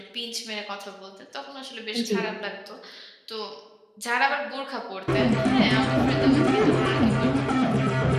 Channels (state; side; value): identical; both; correlation 1.00